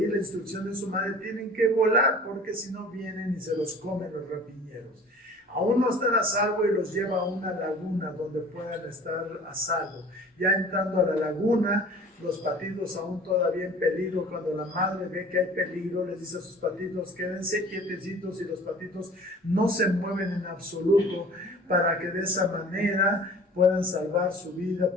la instrucción de su madre, tienen que volar, porque si no vienen y se los comen los rapiñeros. Aún no están a salvo y los lleva a una laguna donde puedan estar a salvo. Ya entrando a la laguna, los patitos aún todavía en peligro, cuando la madre ve que hay peligro, les dice a sus patitos, quédense quietecitos, y los patitos no se mueven en absoluto, para que de esa manera puedan salvar su vida,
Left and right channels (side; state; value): both; normal; correlation 0.45